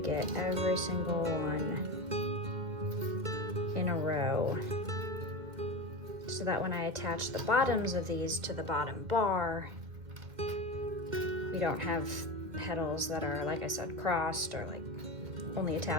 every single one in a row, so that when I attach the bottoms of these to the bottom bar, you don't have petals that are, like I said, crossed or like only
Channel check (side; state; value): left; late; 2.0 ms